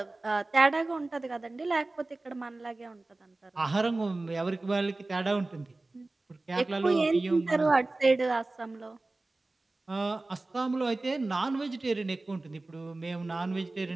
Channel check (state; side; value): quieter; left; 3.1 dB